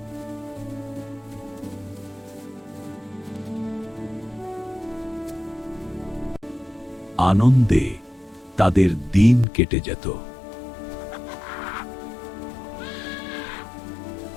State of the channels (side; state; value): right; drops out; at 9.5 s